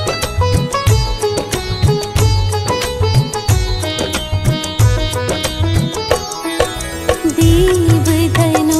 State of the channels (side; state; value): both; identical; correlation 1.00